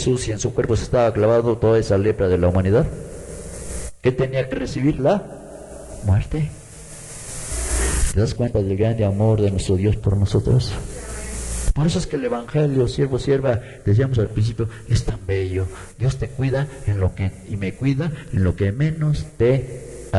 si en su cuerpo se estaba clavando toda esa lepra de la humanidad? ¿Qué tenía que recibir? La muerte. ¿Te das cuenta del grande amor de nuestro Dios por nosotros? Por eso es que el Evangelio, siervo, sierva, decíamos al principio, es tan bello. Dios te cuida en lo que, y me cuida en lo que menos te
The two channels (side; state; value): both; identical; correlation 1.00